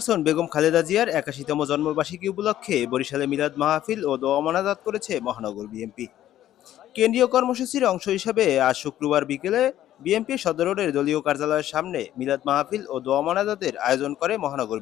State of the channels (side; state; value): right; quieter; 12.5 dB